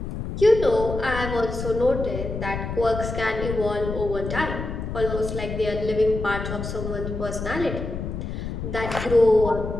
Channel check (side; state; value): left; noise; rumble, 6 dB below the sound